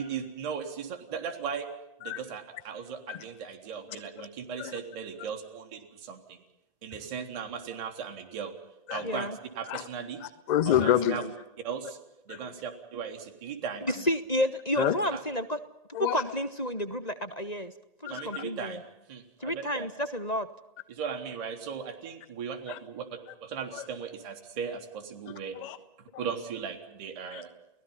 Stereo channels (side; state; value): right; late; 1.9 ms